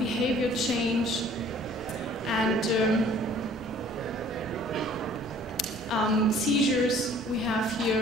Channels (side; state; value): both; normal; correlation 0.53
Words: change, and seizures we have